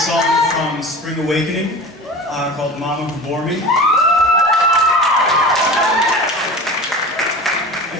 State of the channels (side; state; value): both; normal; correlation 0.34